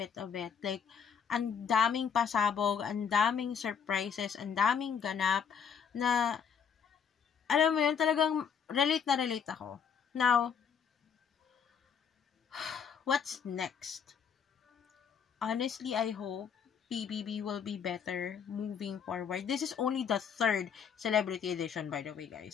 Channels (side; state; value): right; quieter; 7.1 dB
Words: of it. Like, ang daming pasabog, ang daming surprises, ang daming ganap, na, alam mo yun, talagang relate na relate ako. Now, what's next? Honestly, I hope PBB will be better moving forward. This is only the 3rd celebrity edition, by the way,